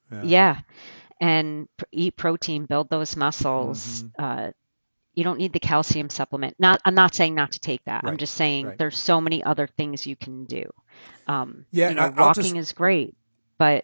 Yeah. yeah, and eat protein, build those muscles. Mm-hmm. You don't need the calcium supplement. I'm not saying not to take that. I'm Right. just saying Right. there's so many other things you can do. Yeah. I'll Walking just. is great,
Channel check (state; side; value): inverted; both; correlation -1.00